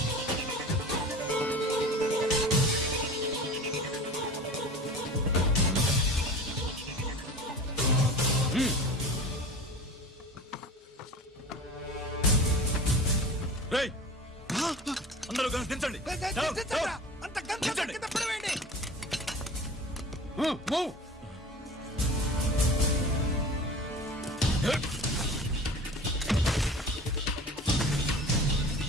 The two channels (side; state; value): both; normal; correlation 0.37